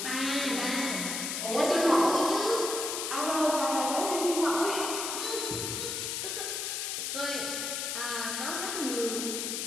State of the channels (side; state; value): left; noise; hiss, 2 dB below the sound